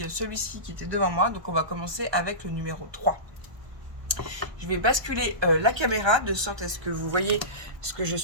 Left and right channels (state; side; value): late; left; 1.3 ms